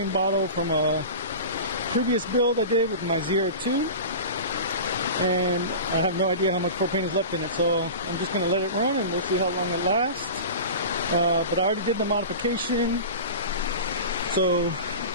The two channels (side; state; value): both; inverted; correlation -0.32